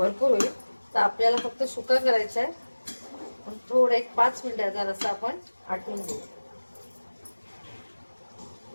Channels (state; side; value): inverted; both; correlation -1.00